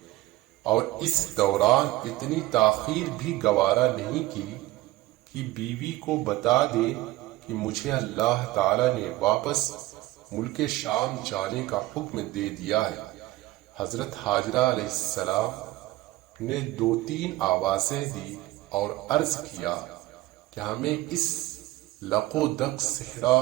اور اس دوران اتنی تاخیر بھی گوارا نہیں کی کہ بیوی کو بتا دے کہ مجھے اللہ تعالی نے واپس ملک شام جانے کا حکم دے دیا ہے۔ حضرت ہاجرہ علیہ السلام نے 2-3 آوازیں دی اور عرض کیا کہ ہمیں اس لق و دق صحرا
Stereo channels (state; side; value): quieter; left; 18.0 dB